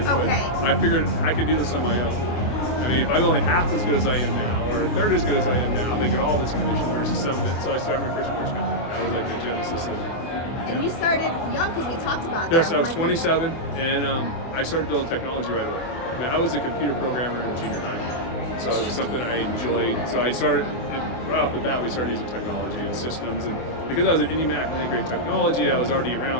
Okay. But I figured I could do this on my own. If I'm only half as good as I am now, or a third as good as I am now, I'm making all this commission versus some of it. So I started my first mortgage company. That was like the genesis of. And you started young, because we talked about that. Yes, I was 27, and I started building technology right away. I was a computer programmer in junior high, so it was something I enjoyed. So I started right off the bat. We started using technology and systems, and because I was at IndyMac and had great technology, I was already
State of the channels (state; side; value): late; right; 24 ms